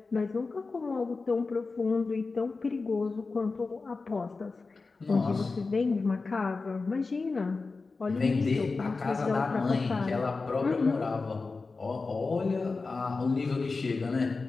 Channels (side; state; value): right; quieter; 4.0 dB